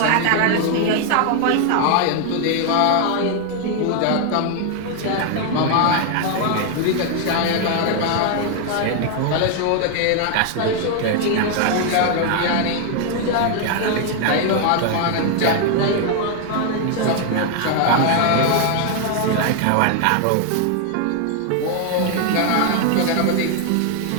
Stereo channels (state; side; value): different; both; correlation 0.00